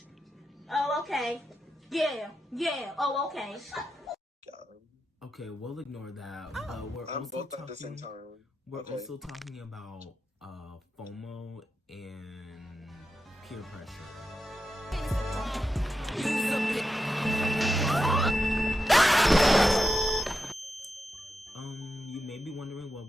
Oh, okay. Yeah. Oh, okay. Okay, we'll ignore that. We're I'm also both talking, at the same time. We're also talking about Fomo and peer pressure. You may be wondering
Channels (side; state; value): both; normal; correlation 0.88